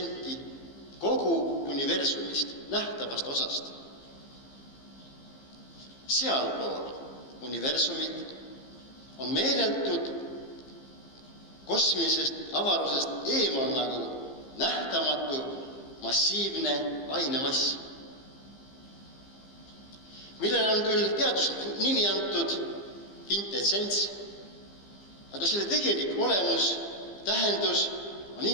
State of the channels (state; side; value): late; right; 15 ms